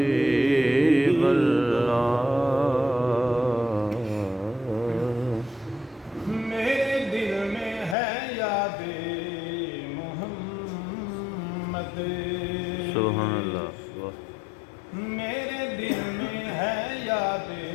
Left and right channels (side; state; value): right; drops out; at 8.0 s